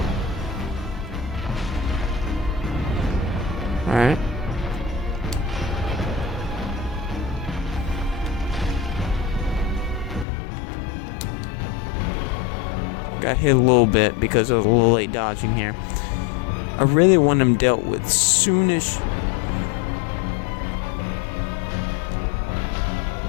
Alright. Got hit a little bit because I was a little late dodging here. I really want him dealt with soonish.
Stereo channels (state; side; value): drops out; right; at 10.2 s